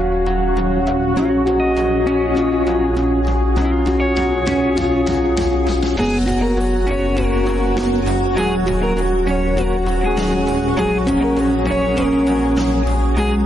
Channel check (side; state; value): both; normal; correlation 0.84